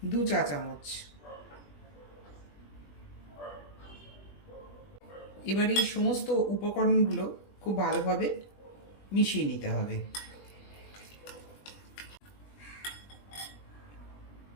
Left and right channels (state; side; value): late; right; 20 ms